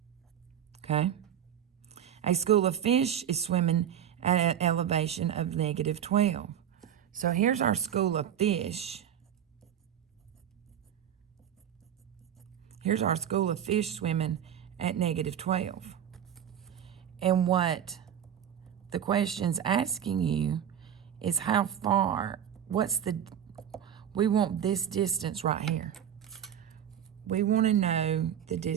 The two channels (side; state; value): left; quieter; 9.5 dB